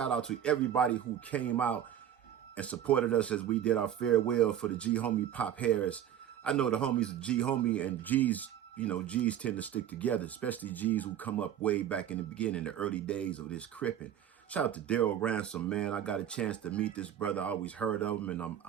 out to everybody who came out and supported us as we did our farewell for the G homie Pop Harris. I know the homies G homie and G's, you know, G's tend to stick together, especially G's who come up way back in the beginning, the early days of this cripping. Shout out to Daryl Ransom, man. I got a chance to meet this brother. I always heard of him, and I'm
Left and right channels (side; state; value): left; quieter; 10.3 dB